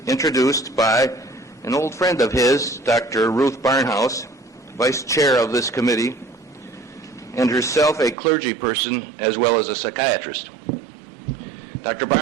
introduced by an old friend of his, Dr. Ruth Barnhouse, Vice Chair of this committee, and herself a clergy person as well as a psychiatrist. Dr.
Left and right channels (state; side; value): drops out; left; at 8.2 s